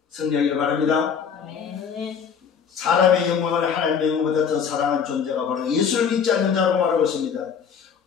승리하기를 바랍니다. 아멘. 사람의 영광을 하나님의 영광보다 더 사랑한 존재가 바로 예수를 믿지 않는 자라고 말하고 있습니다.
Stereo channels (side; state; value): right; quieter; 6.9 dB